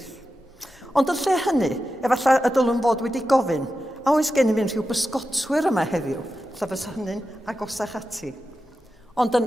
Ond yn lle hynny, efallai y dylwn fod wedi gofyn, a oes gen i fi'n rhyw bysgotwyr yma heddiw, lle fys hynny'n agosach ati. Ond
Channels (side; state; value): both; normal; correlation 0.91